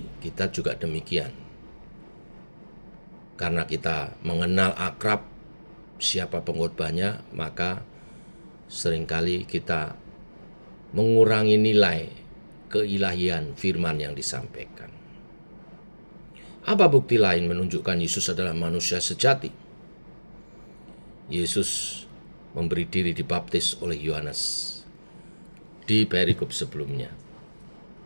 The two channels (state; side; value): inverted; both; correlation -1.00